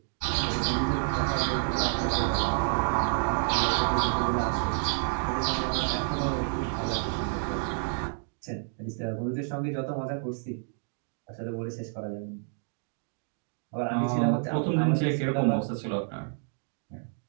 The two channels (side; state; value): left; silent; 58 dB below the other